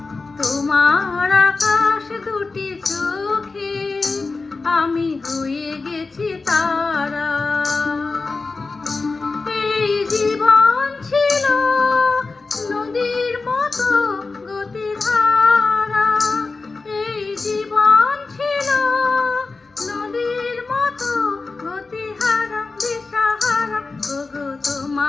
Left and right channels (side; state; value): right; quieter; 3.9 dB